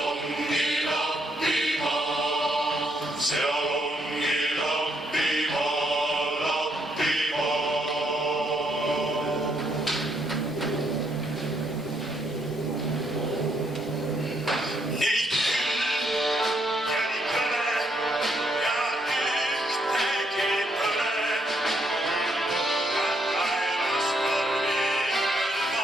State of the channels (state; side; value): normal; both; correlation 0.74